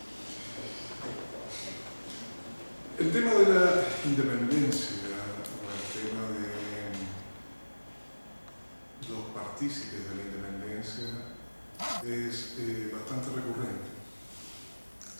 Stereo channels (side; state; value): both; inverted; correlation -1.00